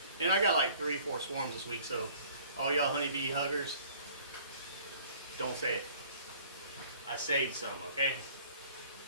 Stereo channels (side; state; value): both; inverted; correlation -0.53